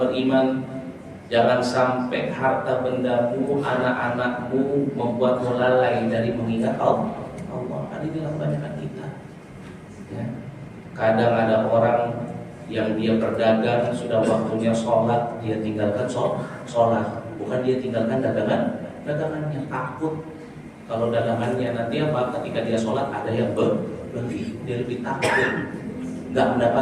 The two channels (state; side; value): identical; both; correlation 1.00